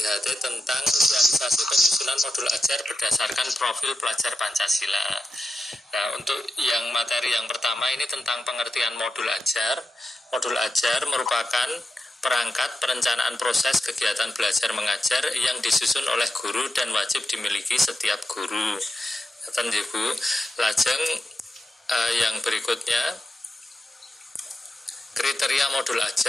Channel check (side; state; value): both; normal; correlation 0.90